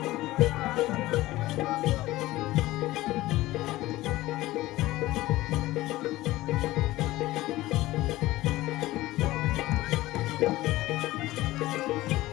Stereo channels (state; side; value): quieter; right; 17.4 dB